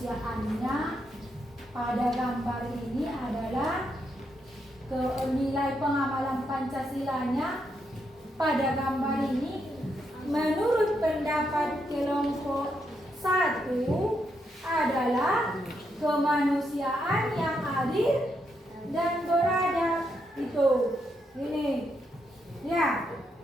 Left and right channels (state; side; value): normal; both; correlation 0.80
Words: pada gambar ini adalah nilai pengamalan Pancasilanya pada gambar ini menurut pendapat kelompok 1 adalah kemanusiaan yang adil dan beradab. Itu ini ya